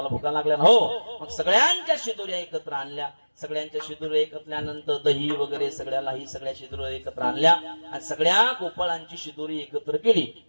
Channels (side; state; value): both; inverted; correlation -1.00